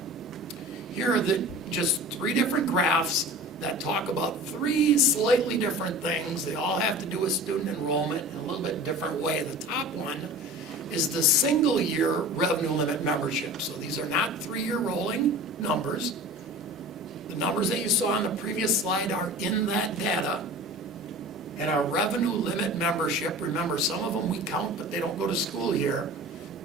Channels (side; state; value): both; normal; correlation 0.38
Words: Here are just 3 different graphs that talk about 3 slightly different things. They all have to do with student enrollment in a little bit different way. The top one is the single year revenue limit membership. So these are not 3-year rolling numbers. The numbers that you saw on the previous slide are in that data. And our revenue limit membership, remember some of them we count but they don't go to school here,